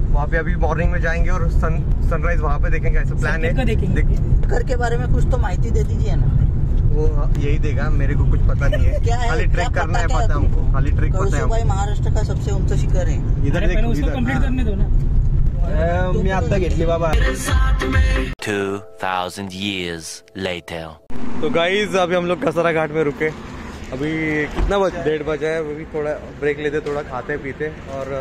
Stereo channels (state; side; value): identical; both; correlation 1.00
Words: वहाँ पे अभी मॉर्निंग में जाएंगे और सनराइज वहाँ पे देखेंगे. ऐसा प्लान है. शिखर के बारे में कुछ तो माहिती दे दीजिए ना. वो यही देगा, मेरे को कुछ पता नहीं है. क्या है, खाली ट्रेक करना है, पता हमको. खाली ट्रेक पता है. कलसूबाई महाराष्ट्र का सबसे ऊंचा शिखर है. इधर कंप्लीट करने दो ना. मी आता घेतली बाबा. 2000 years later. तो गाइज अभी हम लोग कसरा घाट में रुके. अभी कितना बजे? 1:30 बजे है. अभी थोड़ा ब्रेक लेते, थोड़ा खाते पीते और